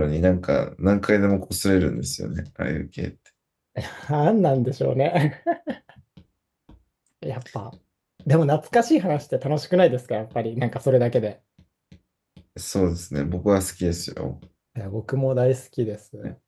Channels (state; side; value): identical; both; correlation 1.00